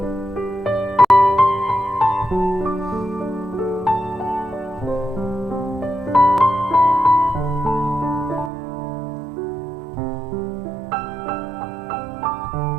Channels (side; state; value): left; drops out; at 8.5 s